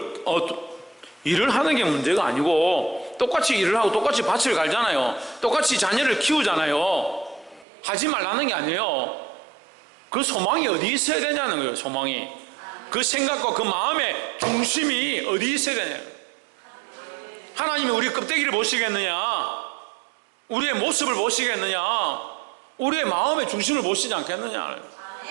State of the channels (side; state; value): left; drops out; at 7.7 s